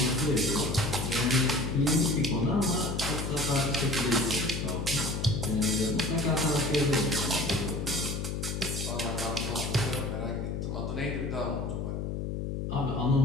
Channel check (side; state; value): left; noise; hum, 3 dB below the sound